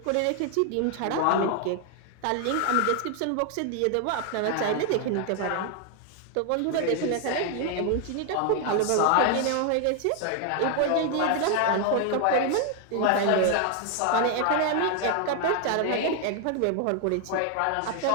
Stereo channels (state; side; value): different; both; correlation 0.00